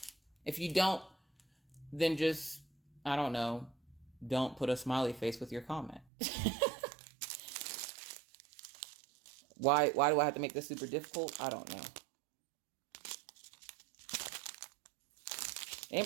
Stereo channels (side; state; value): left; drops out; at 6.1 s